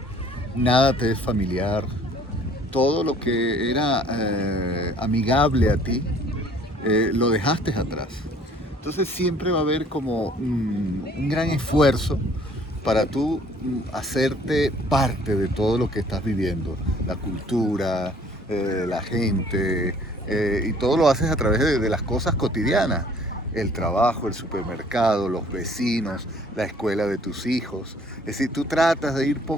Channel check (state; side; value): normal; both; correlation 0.56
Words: nada te es familiar, todo lo que era amigable a ti, lo dejaste atrás. Entonces siempre va a haber como un gran esfuerzo para tú hacerte parte de todo lo que estás viviendo, la cultura, la gente, y todo lo haces a través de las cosas cotidianas, el trabajo, el supermercado, los vecinos, la escuela de tus hijos. Es decir, tú tratas de ir